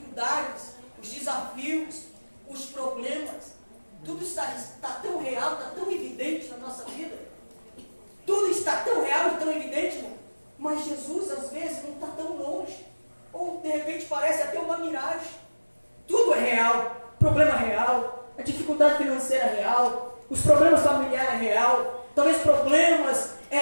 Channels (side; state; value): both; inverted; correlation -1.00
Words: os desafios, os problemas, tudo está tão real, está tão evidente na nossa vida. Tudo está tão real e tão evidente, irmão. Mas Jesus, às vezes, não está tão longe. Ou, de repente, parece até uma miragem. Tudo é real. Problema real. A dificuldade financeira é real. Os problemas familiares é real. Talvez problemas